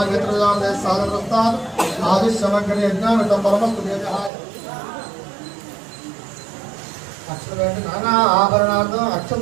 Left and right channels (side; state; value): left; drops out; at 4.3 s